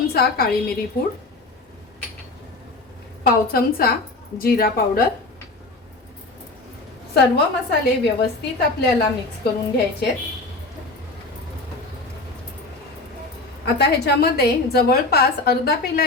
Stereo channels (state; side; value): quieter; right; 3.1 dB